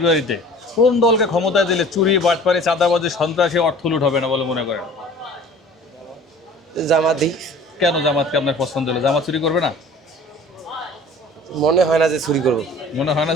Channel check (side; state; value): both; normal; correlation 0.46